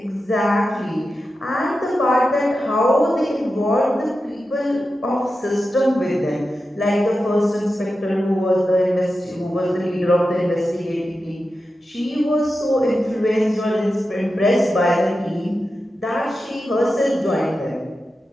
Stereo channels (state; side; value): normal; both; correlation 0.91